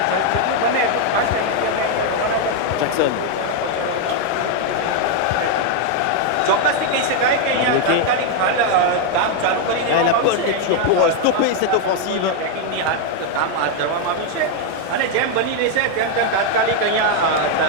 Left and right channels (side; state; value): both; different; correlation 0.01